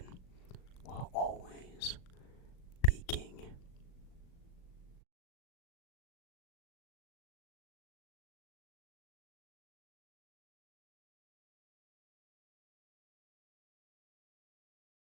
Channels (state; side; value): late; right; 38 ms